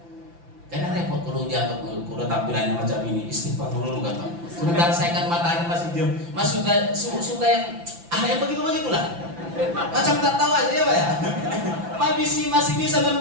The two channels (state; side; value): late; left; 5.9 ms